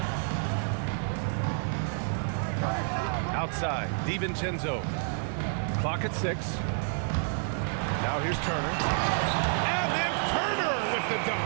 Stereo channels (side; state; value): left; silent; 58 dB below the other